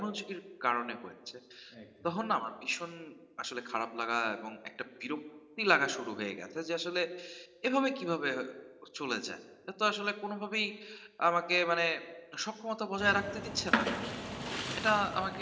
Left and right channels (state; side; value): identical; both; correlation 1.00